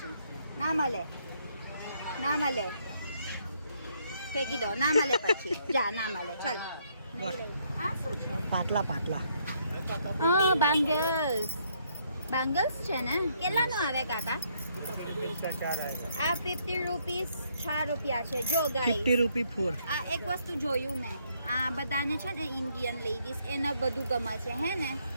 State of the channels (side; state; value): both; inverted; correlation -0.71